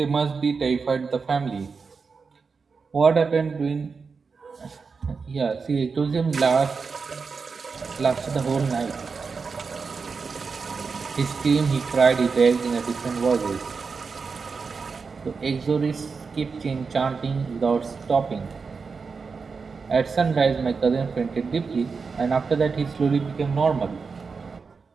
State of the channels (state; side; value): quieter; left; 5.0 dB